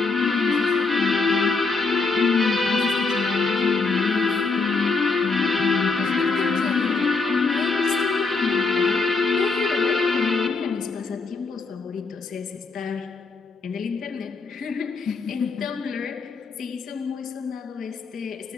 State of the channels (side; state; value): right; quieter; 4.1 dB